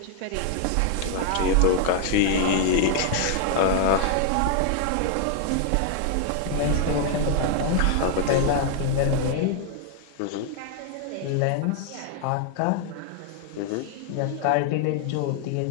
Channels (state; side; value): different; both; correlation 0.00